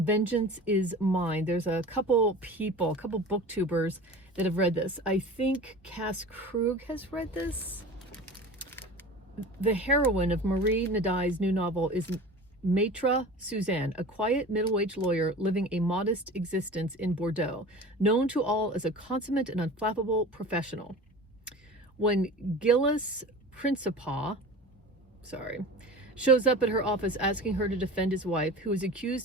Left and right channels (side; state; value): both; normal; correlation 0.36